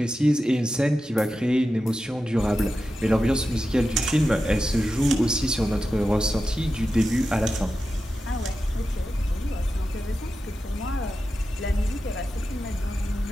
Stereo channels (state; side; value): normal; both; correlation 0.91